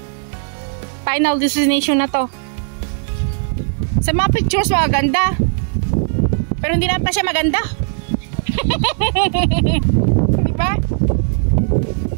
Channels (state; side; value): silent; left; digital silence